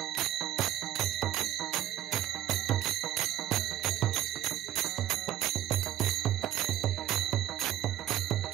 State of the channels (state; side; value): quieter; left; 12.8 dB